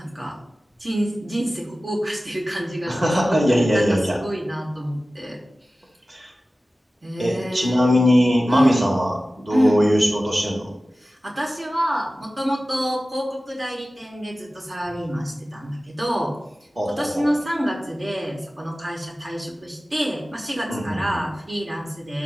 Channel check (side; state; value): both; normal; correlation 0.96